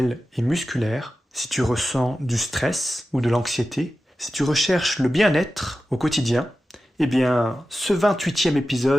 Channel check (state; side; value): normal; both; correlation 0.93